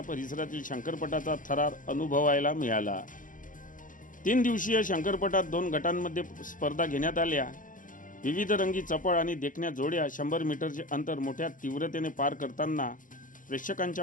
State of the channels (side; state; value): right; late; 0.38 ms